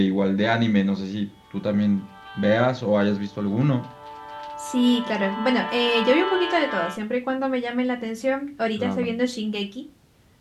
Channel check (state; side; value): identical; both; correlation 1.00